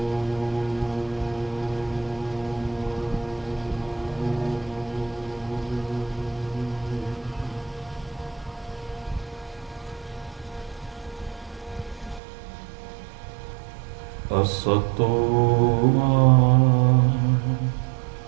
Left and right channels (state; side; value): drops out; left; at 12.2 s